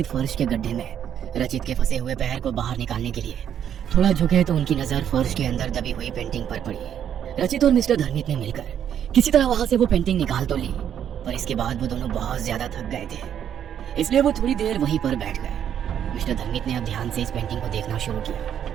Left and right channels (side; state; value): left; quieter; 9.4 dB